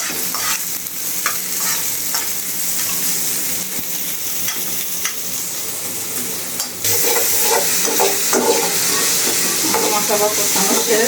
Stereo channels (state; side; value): identical; both; correlation 1.00